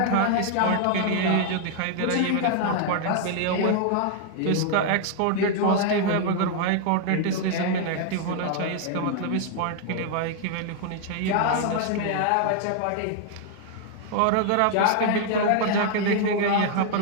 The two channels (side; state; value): both; different; correlation 0.00